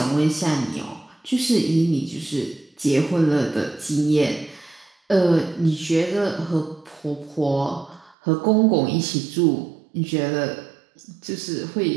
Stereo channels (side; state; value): left; drops out; at 8.2 s